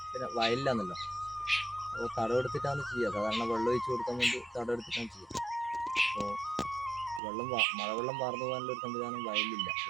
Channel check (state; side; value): drops out; left; at 7.2 s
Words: പിന്നെ വയലിലാണല്ലോ. അപ്പോൾ തടമെടുത്തിട്ടാണ് ചെയ്യുക. സാധാരണ വെള്ളം ഒഴിച്ച് കൊടുക്കാൻ വേണ്ടി തടമെടുത്തിട്ടാണ് ചെയ്യുക. അപ്പോൾ മഴവെള്ളം വാർന്നു പോകാനുള്ള ഒരു സംവിധാനം വയലിലില്ല